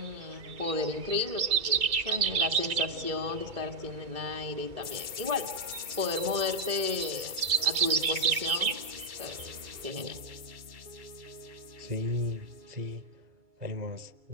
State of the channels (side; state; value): left; late; 2.3 ms